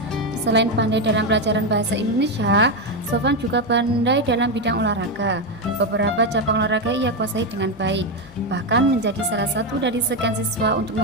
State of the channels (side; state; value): both; normal; correlation 0.09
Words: Selain pandai dalam pelajaran bahasa Indonesia, Sofan juga pandai dalam bidang olahraga. Beberapa cabang olahraga ia kuasai dengan baik, bahkan menjadi salah satu dari sekian siswa untuk